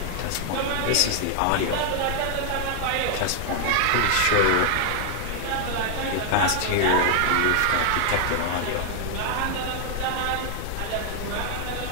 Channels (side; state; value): both; different; correlation 0.00